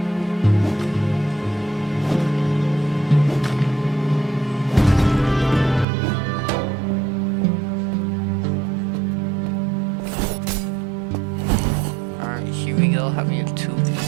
Here we go, having a 2-1.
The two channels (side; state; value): left; drops out; at 5.9 s